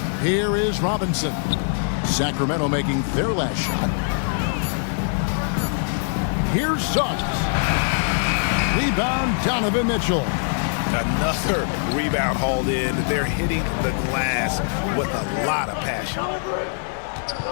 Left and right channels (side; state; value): right; silent; 64 dB below the other